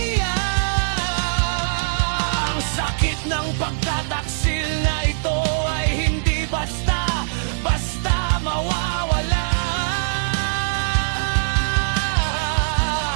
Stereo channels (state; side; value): silent; left; digital silence